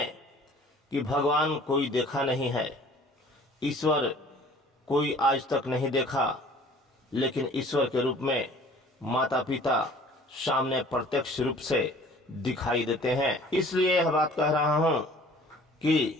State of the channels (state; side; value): normal; both; correlation 0.50